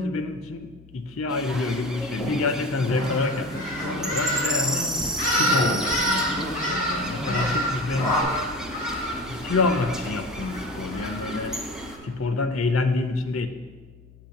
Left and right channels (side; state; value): left; noise; hum, 23 dB below the sound